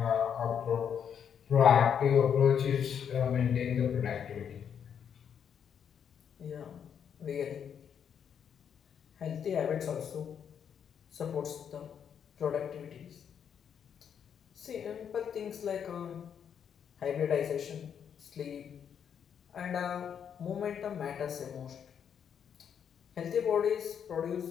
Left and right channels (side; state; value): right; quieter; 8.0 dB